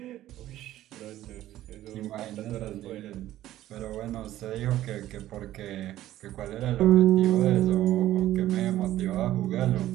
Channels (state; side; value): quieter; left; 13.9 dB